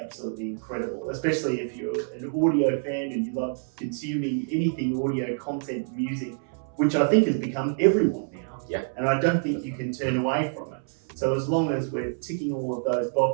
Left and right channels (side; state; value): left; silent; 60 dB below the other